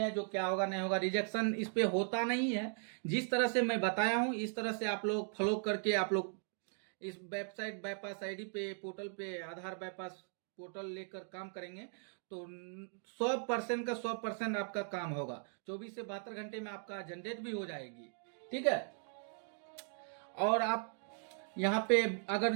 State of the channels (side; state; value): left; silent; 52 dB below the other